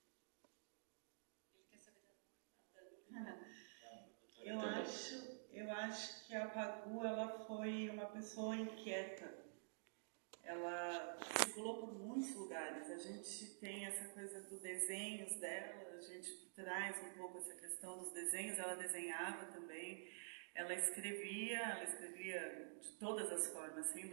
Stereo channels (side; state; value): left; silent; digital silence